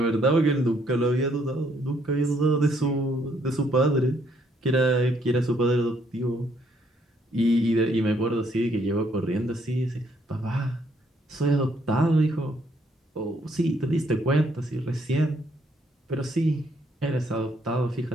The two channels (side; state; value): both; normal; correlation 0.69